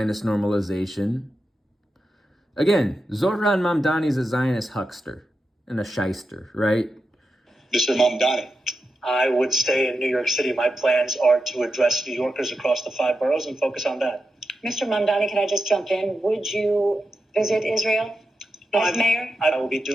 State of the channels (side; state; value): both; normal; correlation 0.89